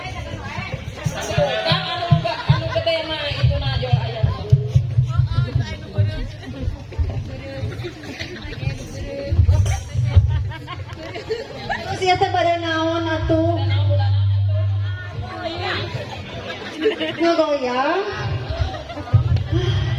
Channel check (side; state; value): both; identical; correlation 1.00